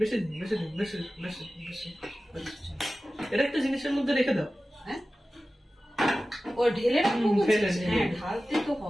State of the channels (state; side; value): normal; both; correlation 0.95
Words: দিন বেশি দিন বেশি বেশি বেশি, এটা একটা জিনিসের মধ্যে রেখে দাও। হ্যাঁ, ও ঢেলে রাখবো। হ্যাঁ, ঢালতে তো